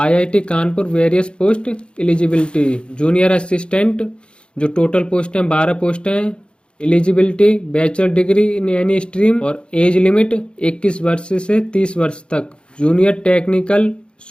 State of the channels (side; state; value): right; late; 0.055 ms